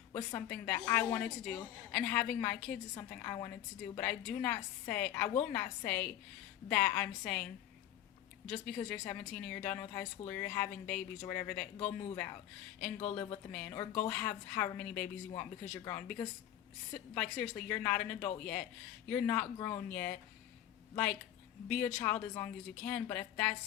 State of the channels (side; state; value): right; quieter; 11.9 dB